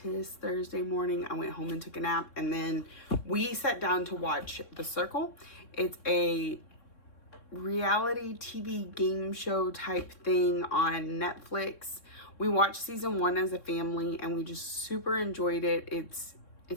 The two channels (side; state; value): right; late; 3.6 ms